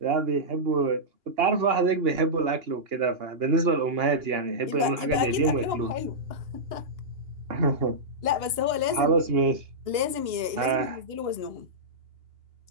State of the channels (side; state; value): left; late; 2.8 ms